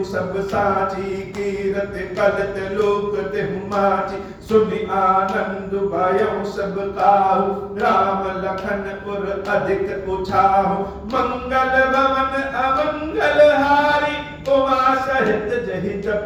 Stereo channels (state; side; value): identical; both; correlation 1.00